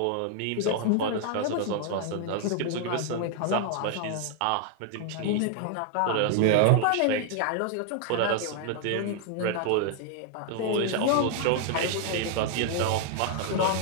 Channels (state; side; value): different; both; correlation 0.00